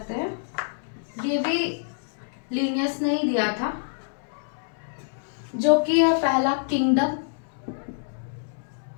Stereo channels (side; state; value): right; silent; digital silence